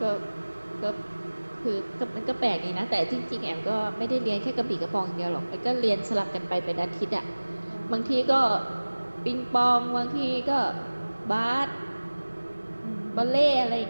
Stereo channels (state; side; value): inverted; both; correlation -1.00